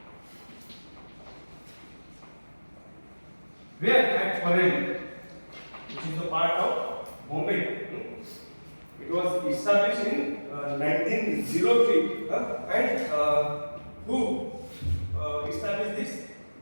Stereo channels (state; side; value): inverted; both; correlation -1.00